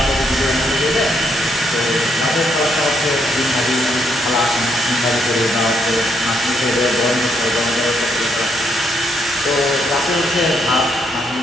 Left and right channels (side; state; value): both; normal; correlation 0.75